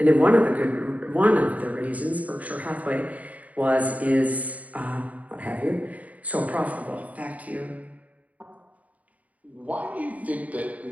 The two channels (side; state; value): left; late; 0.071 ms